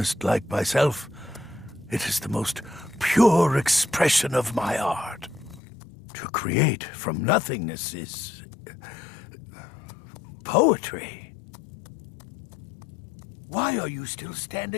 like myself, it is the most pure expression of my art. To create from nothingness is poetry. Why are you still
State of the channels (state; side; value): drops out; right; at 5.6 s